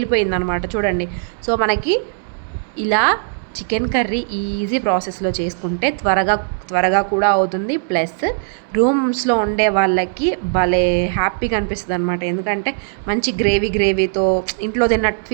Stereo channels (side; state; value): left; silent; 67 dB below the other